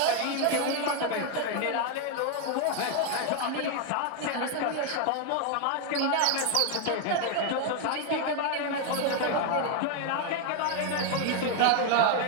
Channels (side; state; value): both; different; correlation 0.01